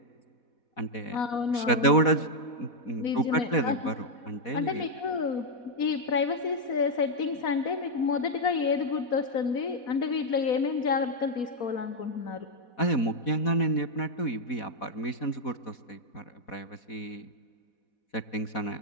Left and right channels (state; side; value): late; right; 4.1 ms